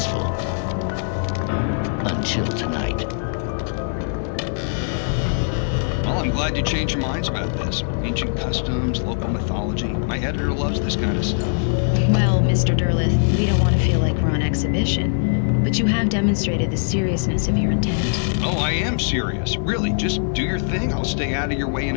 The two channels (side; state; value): right; silent; digital silence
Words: Until tonight. Well, I'm glad you changed your minds about this. Ancient customs, local mythology. My editor loves this kind of stuff. Well, Mr. Derleth, we don't want to feel like we're on exhibition. But you have demonstrated the seriousness of your intent. Oh, I am serious. Really, just do your thing. I'll stay out of your way and